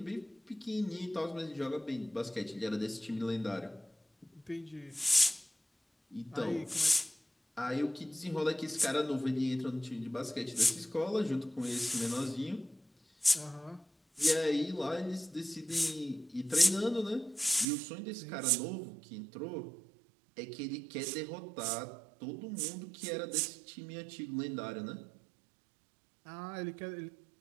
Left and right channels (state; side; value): drops out; left; at 17.7 s